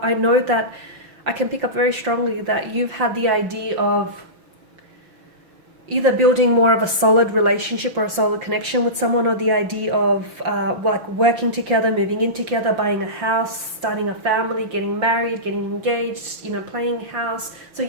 I know that I can pick up very strongly that you've had the idea of either building more of a solid relationship or a solid connection with someone, or the idea of working together, moving in together, buying a house, starting a family, getting married, getting engaged, playing house. So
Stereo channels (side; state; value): left; late; 5.7 ms